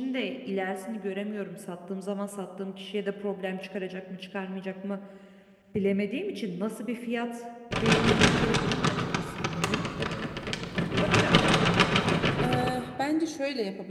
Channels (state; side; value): identical; both; correlation 1.00